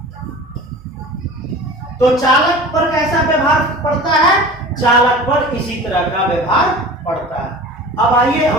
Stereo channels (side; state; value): both; normal; correlation 0.38